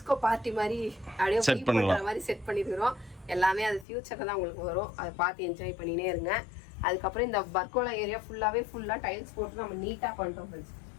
பார்ட்டி மாதிரி அப்படியே செட் பண்ற மாதிரி செட் பண்ணிருக்கிறோம். எல்லாமே அது ஃபியூச்சர்ல தான் உங்களுக்கு வரும். அதை பார்த்து என்ஜாய் பண்ணினே இருங்க. அதுக்கப்புறம் இந்த பர்கோலா ஏரியா ஃபுல்லா டைல்ஸ் போட்டு நம்ம நீட்டா பண்ணிட்டோம் ஃப்ரெண்ட்ஸ்.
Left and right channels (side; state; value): right; drops out; at 3.9 s